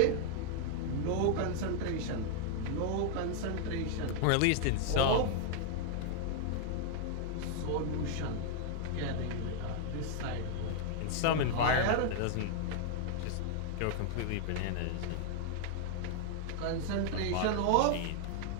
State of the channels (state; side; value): different; both; correlation 0.00